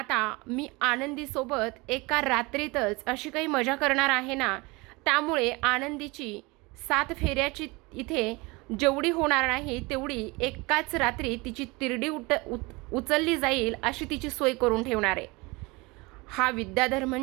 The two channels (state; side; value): quieter; left; 24.9 dB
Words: मी आनंदीसोबत एका रात्रीतच अशी काही मजा करणार आहे ना, त्यामुळे आनंदीची 7 फेऱ्याची इथे जेवढी होणार नाही तेवढी एकाच रात्री तिची तिरडी उचलली जाईल अशी तिची सोय करून ठेवणार आहे. हा विद्याधर